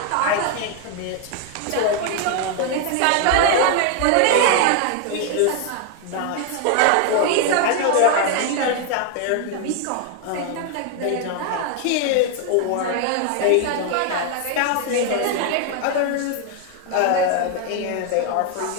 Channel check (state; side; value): different; both; correlation 0.00